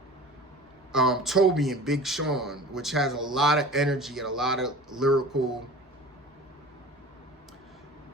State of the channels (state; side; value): normal; both; correlation 0.40